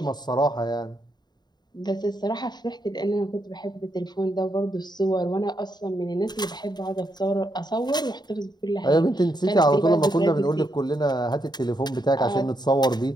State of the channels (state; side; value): late; right; 0.20 ms